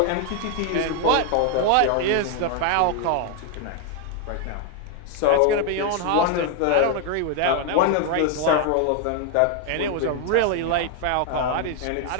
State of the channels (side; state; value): both; different; correlation 0.01